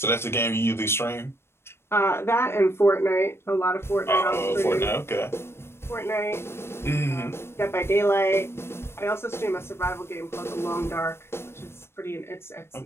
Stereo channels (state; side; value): late; right; 0.12 ms